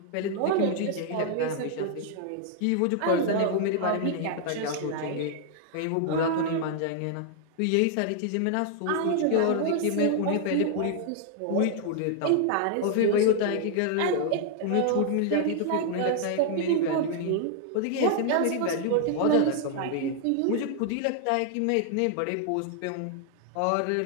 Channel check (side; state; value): both; different; correlation 0.00